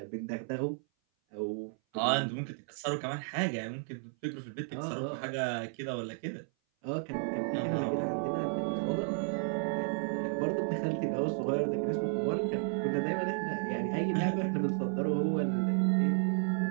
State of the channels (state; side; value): silent; left; 56 dB below the other